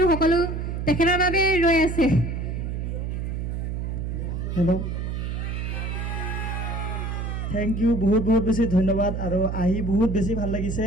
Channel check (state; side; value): noise; right; hum, 3 dB below the sound